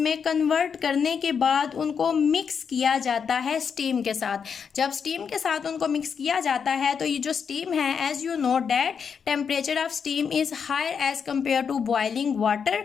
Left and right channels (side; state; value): right; quieter; 6.6 dB